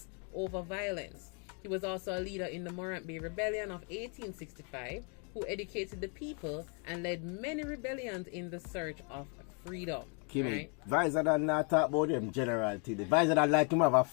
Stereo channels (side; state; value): right; quieter; 37.4 dB